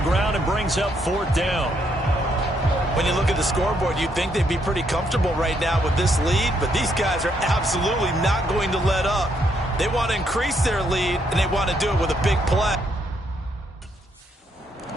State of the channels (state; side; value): normal; both; correlation 0.74